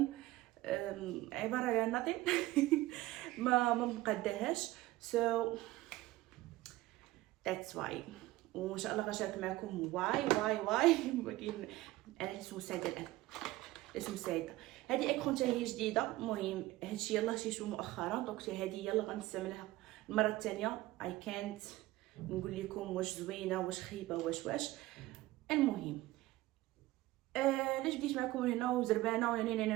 عباره على ناطين ما مقداهاش. سو ذاتس واي، وان شاء الله غنشارك معكم واي ولكن انا لسه سعيده الان، لسه سعيده. هذه اكرون حتى هي جديده. المهم هادشي يلاه شيشو مؤخرا، دونك هذه يلا غنستعملها المره الثانيه. اي كانت نقول لكم واش زوينه واش خايبه واش. المهم علاش بديت معكم هنا وزربانه يعني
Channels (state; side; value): quieter; left; 17.7 dB